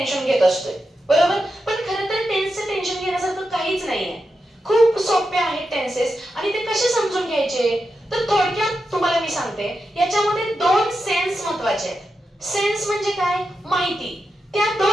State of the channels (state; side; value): normal; both; correlation 0.88